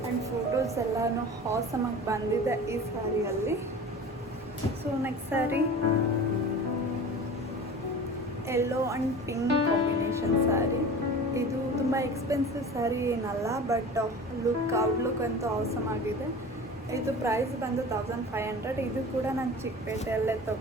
ಆ್ಯಂಡ್ ಫೋಟೋಸ್ ಎಲ್ಲನೂ ಹಾಸಮಾಗಿ ಬಂದಿದೆ ಈ ಸ್ಯಾರಿಯಲ್ಲಿ. So next sari yellow and pink combination sari. ಇದು ತುಂಬ ಎಕ್ಸ್ಪೆನ್ಸಿವ್ ಸ್ಯಾರಿ ಏನಲ್ಲ, ಬಟ್ ಔಟ್ಲುಕ್ ಅಂತೂ ಆಸಮ್ ಆಗಿದೆ. ಇದು ಪ್ರೈಸ್ ಬಂದು 1500. ಇದು ಕೂಡ ನಾನು ಚಿಕ್ಕಪೇಟೆಯಲ್ಲೇ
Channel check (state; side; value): normal; both; correlation 0.37